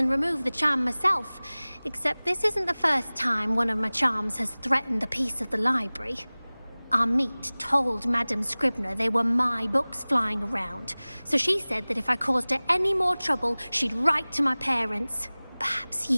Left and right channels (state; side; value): inverted; both; correlation -1.00